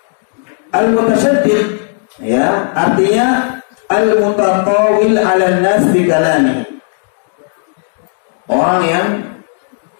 Al mutasyaddiq ya, artinya al mutatawil 'ala nas bi kalami. Orang yang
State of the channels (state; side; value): silent; right; digital silence